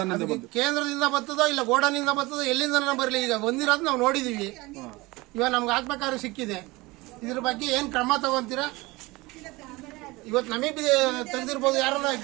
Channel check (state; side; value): quieter; left; 22.1 dB